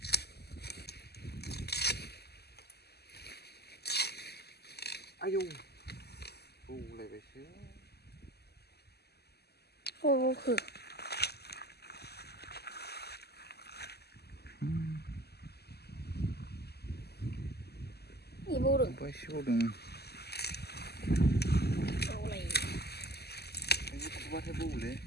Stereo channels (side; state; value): right; late; 0.47 ms